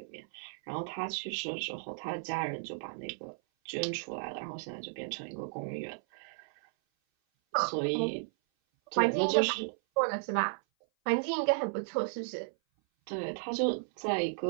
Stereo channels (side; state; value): left; silent; 55 dB below the other